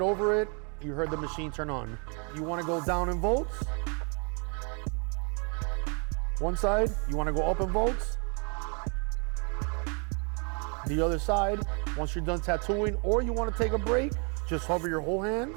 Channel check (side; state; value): left; quieter; 36.1 dB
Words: it, you heard the machine turn on. You want to go down in volts. One side, you want to go up in volts. The other side, once you're done tattooing or you want to take a break, just hover your whole hand